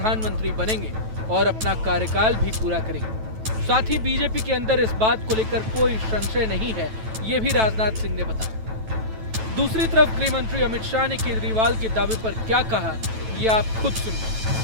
बनेंगे और अपना कार्यकाल भी पूरा करेंगे। साथ ही बीजेपी के अंदर इस बात को लेकर कोई संशय नहीं है, ये भी राजनाथ सिंह ने बताया। दूसरी तरफ गृह मंत्री अमित शाह ने केजरीवाल के दावे पर क्या कहा, ये आप खुद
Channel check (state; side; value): late; left; 9.1 ms